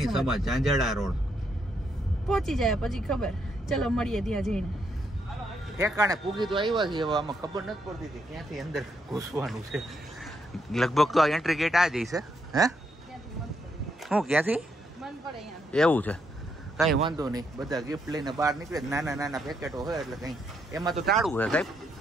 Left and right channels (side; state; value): both; normal; correlation 0.77